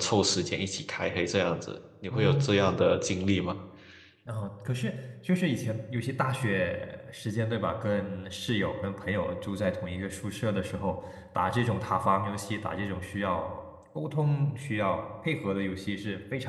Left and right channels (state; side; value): identical; both; correlation 1.00